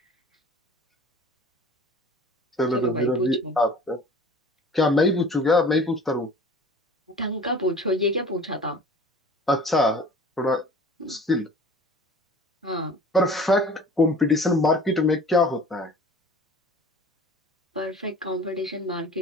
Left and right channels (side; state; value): both; normal; correlation 0.45